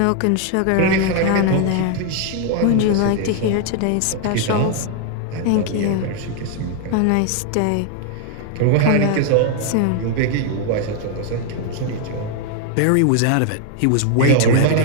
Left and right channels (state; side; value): different; both; correlation 0.00